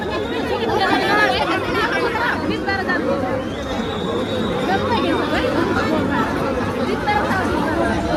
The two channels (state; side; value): identical; both; correlation 1.00